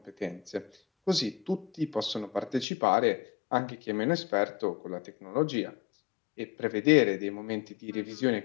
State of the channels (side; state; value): right; drops out; at 2.7 s